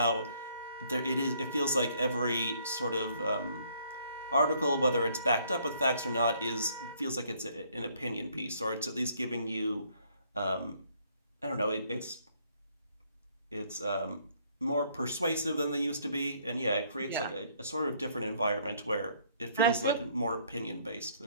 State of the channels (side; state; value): both; inverted; correlation -0.65